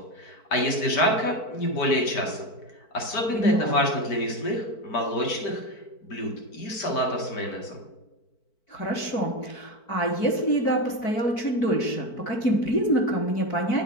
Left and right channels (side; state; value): right; late; 4.5 ms